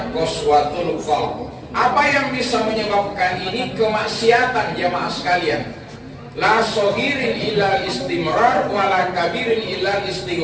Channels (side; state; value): both; identical; correlation 1.00